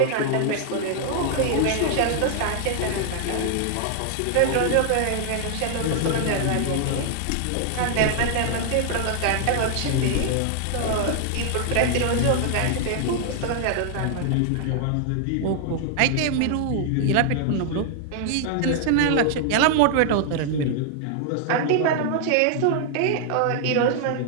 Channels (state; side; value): different; both; correlation 0.00